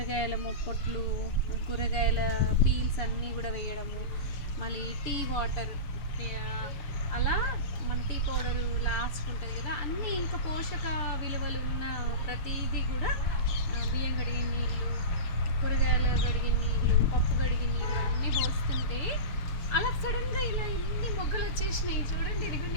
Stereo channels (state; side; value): late; right; 6.9 ms